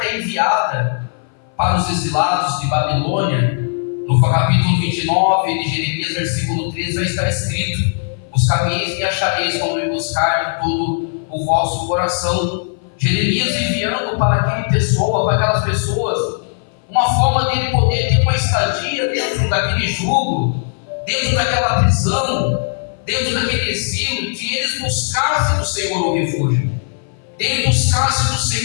é enviada para os exilados de Babilônia, no capítulo 29 de Jeremias, versículo 13, vai estar escrito: buscareis e achareis quando me buscar de todo o vosso coração. Jeremias enviando para aquela pessoa, para aquelas pessoas, uma forma dele poder ter uma estadia dentro daquele jugo, dentro daquela prisão, dentro daquele exílio, que eles buscassem do Senhor um refúgio, dele buscasse do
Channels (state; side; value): silent; right; 59 dB below the other